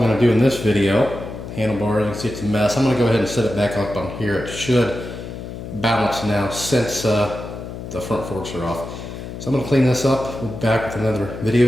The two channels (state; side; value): noise; left; hum, 10 dB below the sound